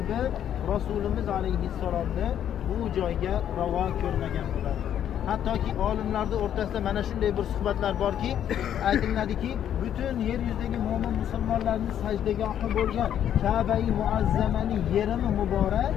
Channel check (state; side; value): quieter; right; 10.0 dB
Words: Rasulimiz alayhissalomni bu joyga ravo ko'rmagan bo'lardi. Hattoki olimlarning o'rtasida mana shunday bir suhbatlar borki, aytiladiki, butun yer yuzidagi mo'min musulmonlarning sajdagohi bo'lgan Ka'ba-i Muazzamaning yerimi muborak